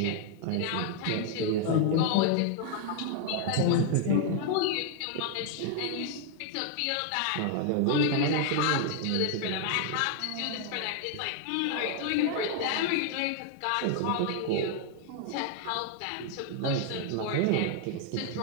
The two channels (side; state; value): both; different; correlation 0.00